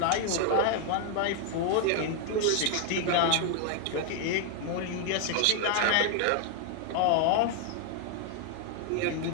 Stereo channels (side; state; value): both; different; correlation 0.00